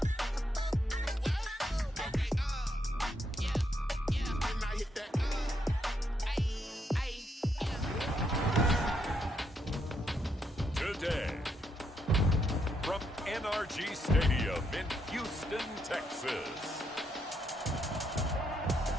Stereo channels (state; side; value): normal; both; correlation 0.77